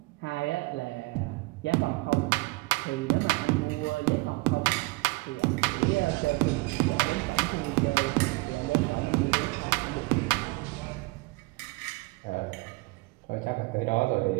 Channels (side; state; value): left; quieter; 24.8 dB